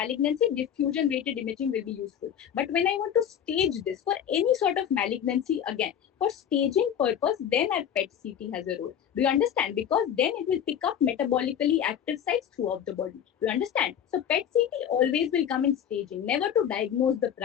diffusion weighted imaging will be useful. But when I want to stage this for any sort of malignancy, again, for staging purpose, then our PET CT has a role. Do you understand? Because then it will pick up metabolically active sites throughout the body. Do you understand? So PET CT always will come in staging, never to diagnose the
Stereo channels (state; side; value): quieter; right; 9.2 dB